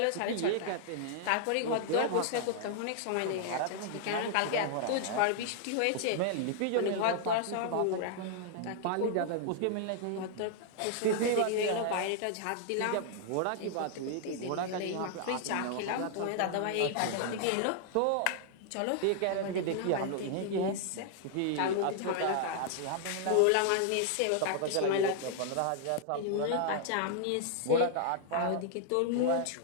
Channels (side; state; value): both; different; correlation -0.01